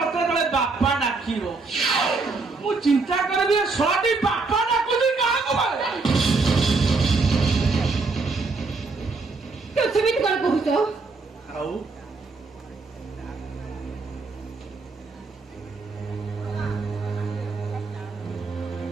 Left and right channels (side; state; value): left; quieter; 4.0 dB